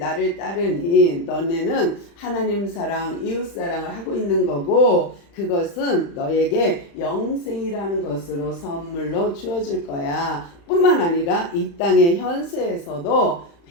따르니 너네는 하나님 사랑 이웃 사랑을 하고 있는 거고 그것은 너에게 영생이라는 것으로 선물로 주어질 거야. 뿐만 아니라 이 땅의 현세에서도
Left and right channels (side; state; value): right; late; 35 ms